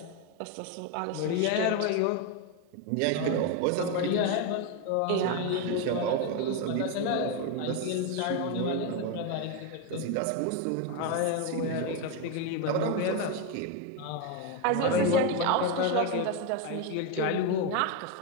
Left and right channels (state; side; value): different; both; correlation 0.02